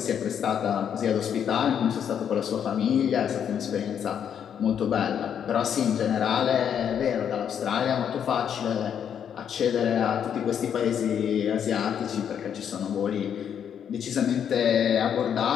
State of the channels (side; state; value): right; quieter; 8.5 dB